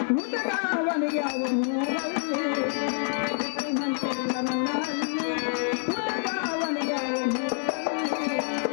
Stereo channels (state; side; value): silent; right; 56 dB below the other